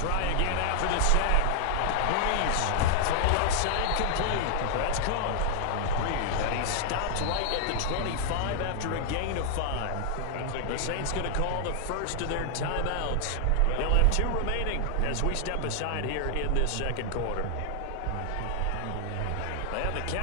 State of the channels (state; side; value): different; both; correlation 0.00